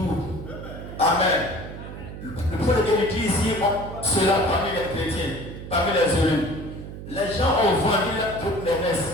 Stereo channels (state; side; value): noise; right; hum, 11 dB below the sound